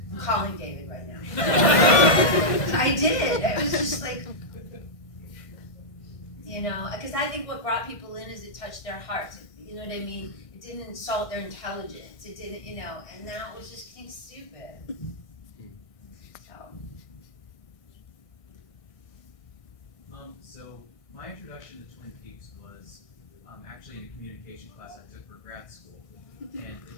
I'm calling David right now. I did. It was just like, you know, because I think what brought people in is it touched their hearts. You know what I mean? It didn't insult their intelligence. It didn't, you know, and now it was just being stupid. So my introduction to Twin Peaks was actually in a communication class I took for grad school. And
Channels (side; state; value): right; late; 1.6 ms